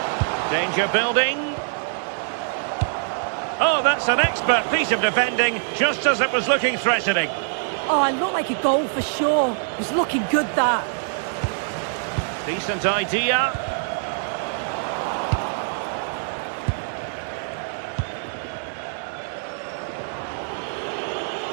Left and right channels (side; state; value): left; silent; 62 dB below the other